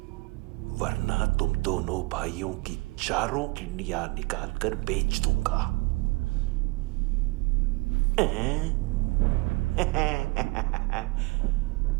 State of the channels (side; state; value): left; quieter; 26.2 dB